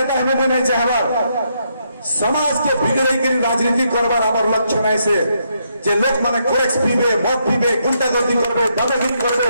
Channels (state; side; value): inverted; both; correlation -0.77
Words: হবে মুই নাই যে হবার समाज के बिगड़े राजनीति करवार आम लक्ष्य नहीं से जे लोक माने कोरेक्स पीबे मद पीबे गुंडागर्दी करबे दादागिरी करबे